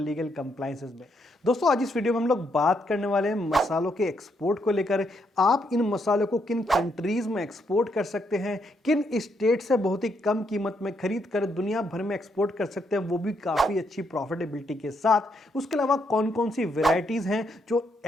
कंप्लायंसेस में। दोस्तों, आज इस वीडियो में हम लोग बात करने वाले हैं मसालों के एक्सपोर्ट को लेकर। आप इन मसालों को किन कंट्रीज में एक्सपोर्ट कर सकते हैं, किन स्टेट से बहुत ही कम कीमत में खरीद कर दुनिया भर में एक्सपोर्ट कर सकते हैं, वो भी काफ़ी अच्छी प्रॉफिटेबिलिटी के साथ। उसके अलावा कौन कौन सी वेराइटीज़ हैं जो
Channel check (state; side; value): normal; both; correlation 0.76